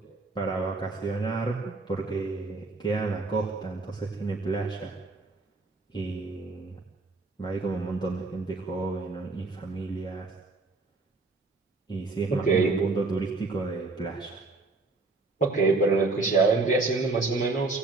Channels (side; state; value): left; quieter; 3.5 dB